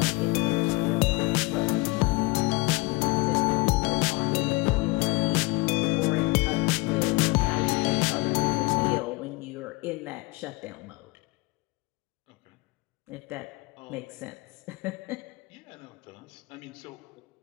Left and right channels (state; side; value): quieter; right; 24.4 dB